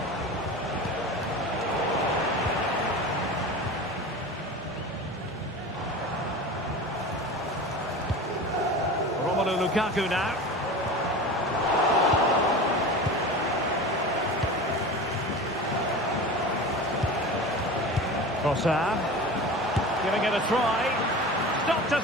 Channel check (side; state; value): both; normal; correlation 0.32